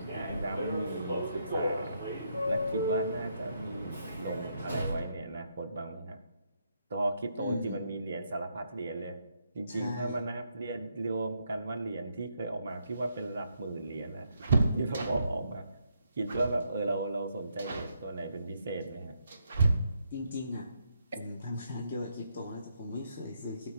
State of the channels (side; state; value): both; inverted; correlation -0.77